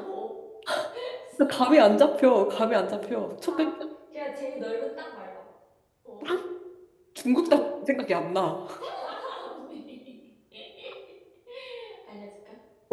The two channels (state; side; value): identical; both; correlation 1.00